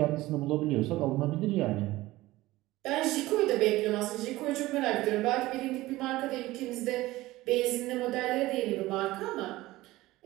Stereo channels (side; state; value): left; quieter; 18.0 dB